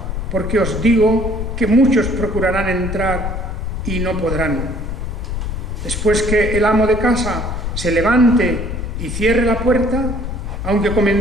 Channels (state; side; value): noise; left; rumble, 4 dB below the sound